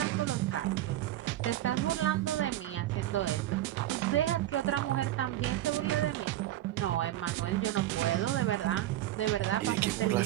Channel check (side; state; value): left; quieter; 13.9 dB